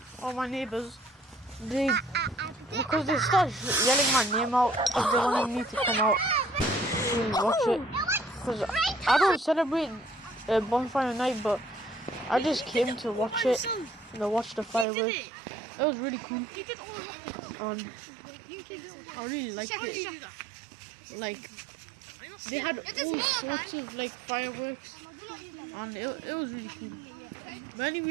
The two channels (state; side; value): drops out; left; at 14.9 s